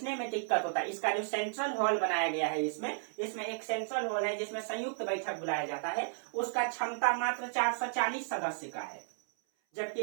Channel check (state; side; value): silent; left; 55 dB below the other